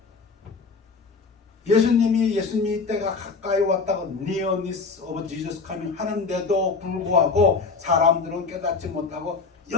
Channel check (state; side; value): quieter; right; 4.5 dB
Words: 예수님이 때가 가까이 왔다고 nearness of Jesus coming 하는데도 불구하고 사람들은 깨닫지 못하고